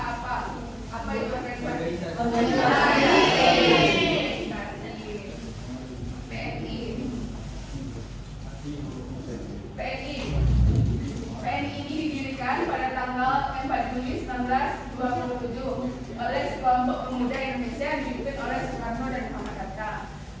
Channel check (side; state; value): both; identical; correlation 1.00